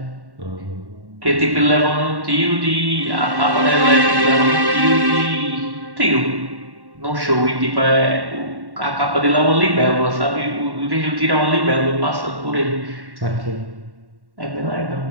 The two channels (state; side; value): late; left; 1.1 ms